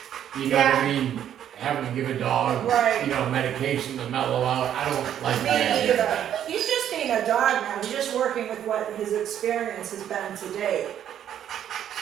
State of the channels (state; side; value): quieter; left; 10.2 dB